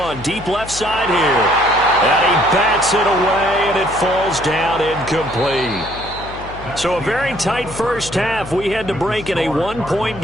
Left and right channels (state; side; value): noise; left; hum, 14 dB below the sound